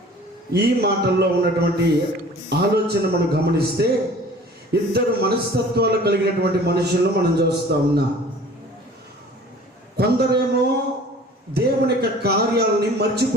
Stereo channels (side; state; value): both; normal; correlation 0.47